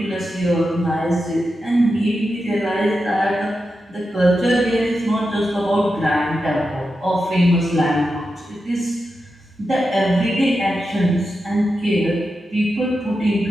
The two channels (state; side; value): normal; both; correlation 0.89